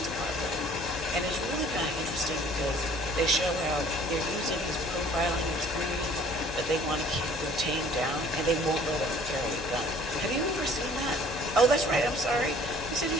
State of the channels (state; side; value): noise; left; hum, 12 dB below the sound